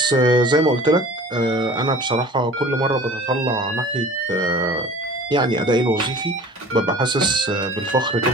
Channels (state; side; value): normal; both; correlation 0.44